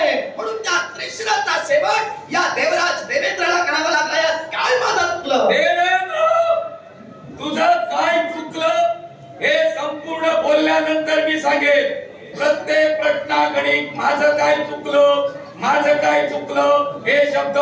म्हणून त्या त्रिशिराचा शेवट या देवराज देवेंद्राला करावा लागला. यात काय माझं चुकलं? देवेंद्र, तुझं काय चुकलं हे संपूर्ण बोलल्यानंतर मी सांगेन. प्रत्येक प्रश्नाकडे माझं काय चुकलं हे शब्द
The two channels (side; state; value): both; identical; correlation 1.00